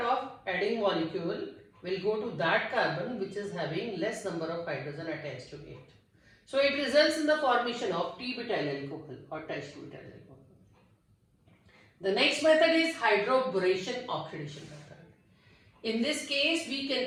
adding molecule will go to that carbon which is having less number of hydrogen attached to it. So it results in the formation of T-butyl alcohol or tributyl alcohol. The next method is hydroboration oxidation method. In this case, we can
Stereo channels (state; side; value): identical; both; correlation 1.00